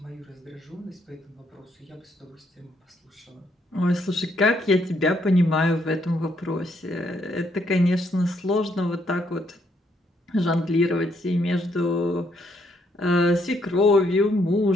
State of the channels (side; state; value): both; normal; correlation 0.73